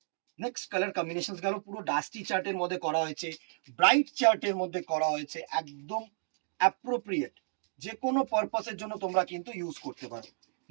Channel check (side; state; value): left; silent; digital silence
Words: নেক্সট কালার কম্বিনেশন গেল, পুরো ডাস্টি চার্টের মধ্যে করা হয়েছে, ব্রাইট চার্টের মধ্যে করা হয়েছে, একদম অ্যাপ্রোপ্রিয়েট, যে কোনো পারপাসের জন্য তোমরা কিন্তু ইউজ করতে পারো।